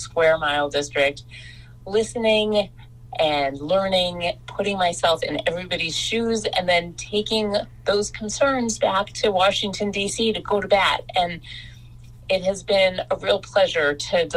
mile district, listening and learning, putting myself in everybody's shoes, and then taking those concerns back to Washington, D.C. to go to bat. And it has been a real pleasure to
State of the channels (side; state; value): both; identical; correlation 1.00